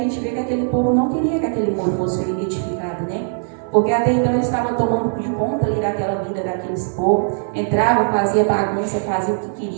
vê que aquele povo não queria que aquele muro fosse edificado, né? Porque até então eles estavam tomando de conta ali daquela vida daqueles povos, entrava, fazia bagunça, fazia o que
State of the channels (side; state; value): left; silent; 59 dB below the other